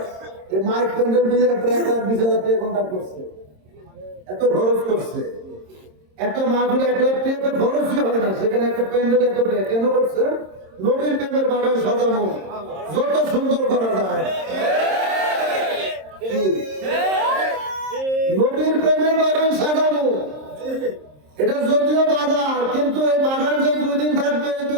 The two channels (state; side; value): late; left; 26 ms